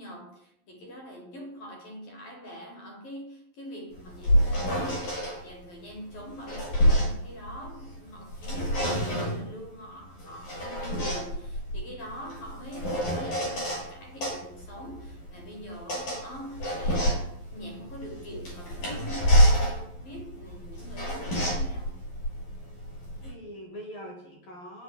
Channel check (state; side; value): late; right; 11 ms